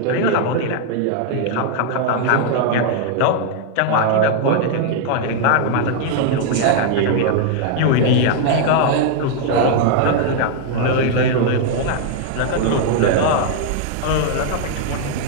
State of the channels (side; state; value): both; different; correlation 0.00